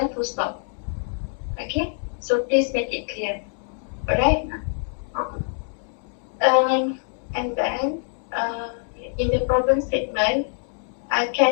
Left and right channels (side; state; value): right; silent; 57 dB below the other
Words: full stop. Okay? So please make it clear. Alright? Okay. And then in the problem statement, I